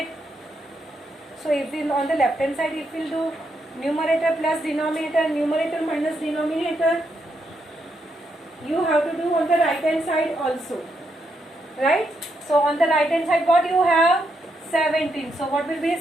So if we on the left hand side, if we will do numerator plus denominator, numerator minus denominator, you have to do on the right hand side also, right? So on the right hand side, what you have? 17. So what will be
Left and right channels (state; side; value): normal; both; correlation 0.79